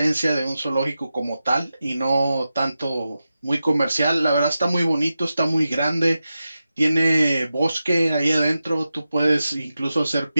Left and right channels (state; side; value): inverted; both; correlation -0.91